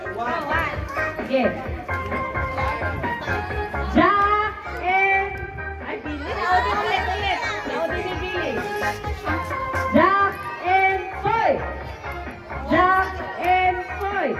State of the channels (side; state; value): both; identical; correlation 1.00